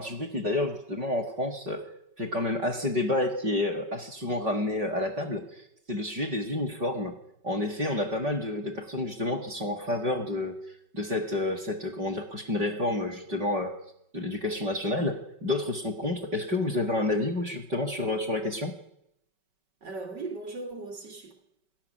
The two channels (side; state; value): left; late; 5.3 ms